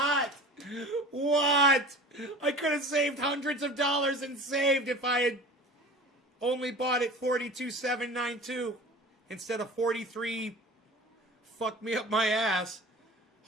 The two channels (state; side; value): normal; both; correlation 0.39